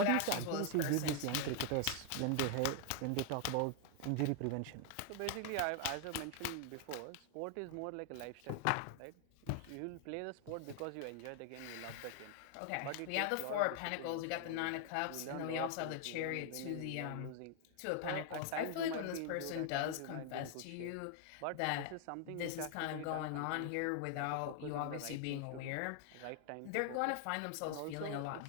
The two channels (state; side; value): different; both; correlation 0.00